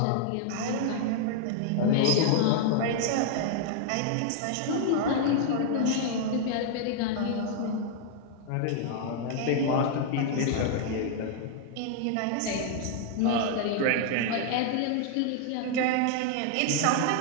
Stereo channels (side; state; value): both; different; correlation 0.00